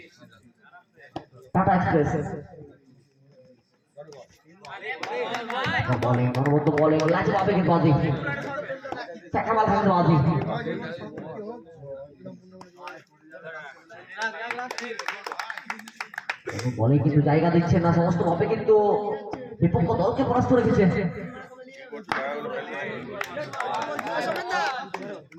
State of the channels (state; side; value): identical; both; correlation 1.00